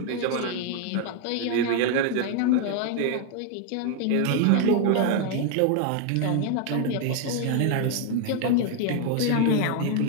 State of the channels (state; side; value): different; both; correlation 0.01